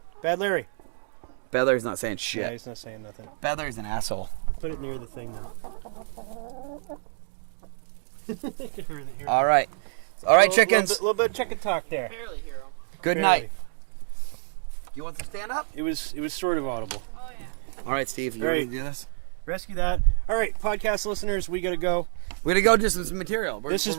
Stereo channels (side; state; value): left; silent; 60 dB below the other